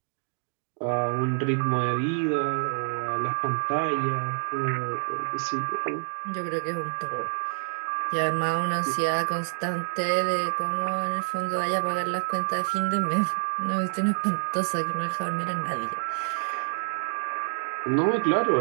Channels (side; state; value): left; silent; digital silence